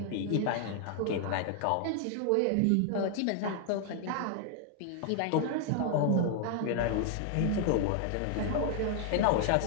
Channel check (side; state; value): both; different; correlation 0.00